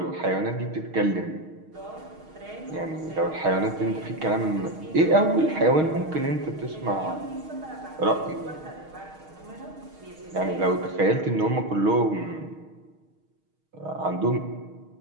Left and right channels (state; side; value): late; left; 6.4 ms